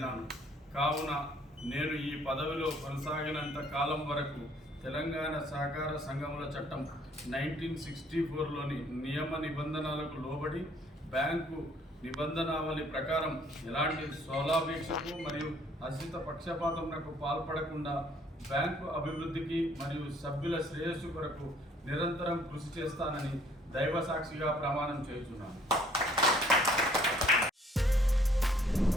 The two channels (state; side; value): normal; both; correlation 0.61